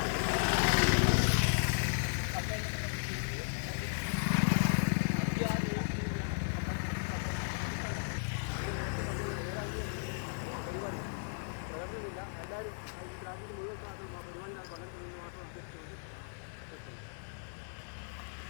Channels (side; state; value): right; silent; digital silence